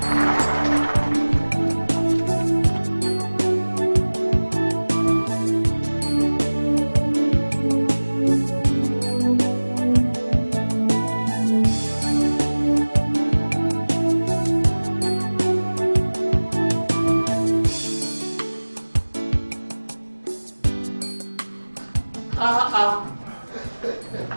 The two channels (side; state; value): both; inverted; correlation -1.00